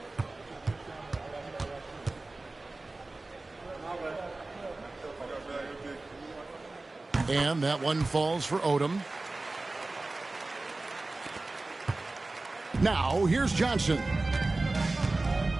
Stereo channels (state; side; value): quieter; left; 3.1 dB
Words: And that one falls for Odom. Now, here's Johnson.